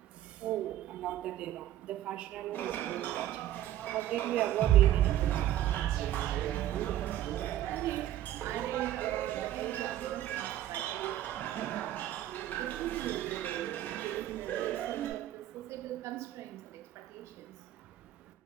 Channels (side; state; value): left; quieter; 12.7 dB